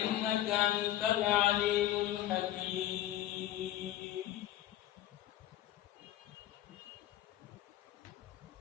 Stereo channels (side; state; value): right; quieter; 13.3 dB